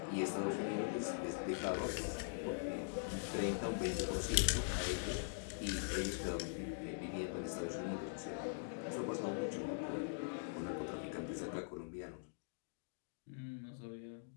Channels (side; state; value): right; silent; digital silence